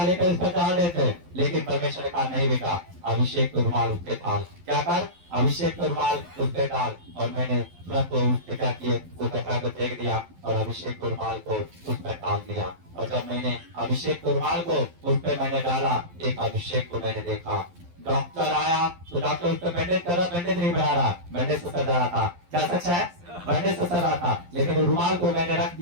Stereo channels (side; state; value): left; late; 11 ms